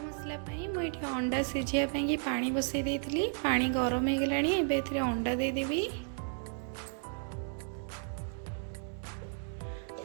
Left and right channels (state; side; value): silent; left; 55 dB below the other